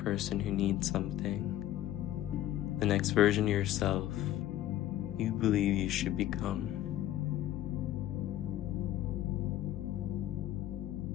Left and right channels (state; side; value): quieter; right; 13.4 dB